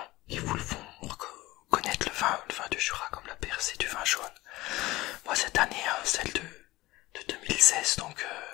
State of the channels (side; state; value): right; quieter; 19.0 dB